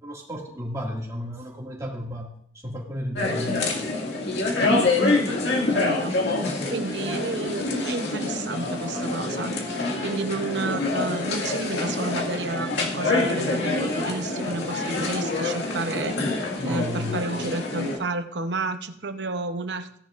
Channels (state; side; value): normal; both; correlation 0.35